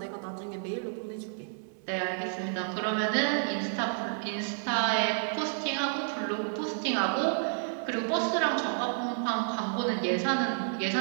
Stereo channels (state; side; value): silent; left; 57 dB below the other